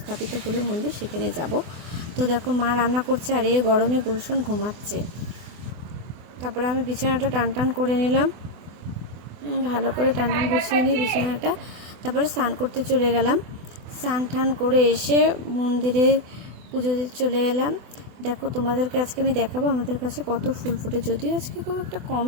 হলো মন্দির, সেখানে যাব। তো দেখো মা রান্না করছে আর এই গরমে গুলশন ঘুমাচ্ছে। তারপরে আমি বিছানাটা টান করে নিলাম, ভালো করে টান গুছিয়ে নিই বিছানাটা। তারপরে স্নান করতে চলে গেলাম। স্নান করে এসে মন্দিরে পুজো দিতে চলে এলাম। দেখো তোমাদেরকে আজকে আমি দেখাবো আমাদের কাছে কত ফুল ফুটে, যদিও আজকে খুব একটা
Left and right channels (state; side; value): late; left; 24 ms